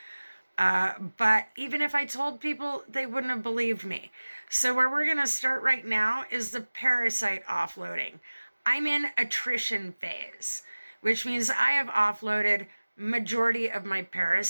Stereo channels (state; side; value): inverted; both; correlation -1.00